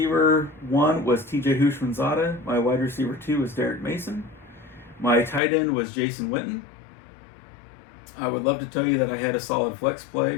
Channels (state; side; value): drops out; right; at 5.4 s